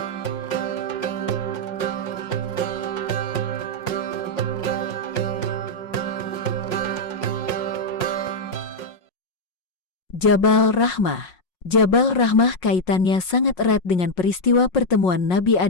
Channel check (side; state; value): right; late; 5.5 ms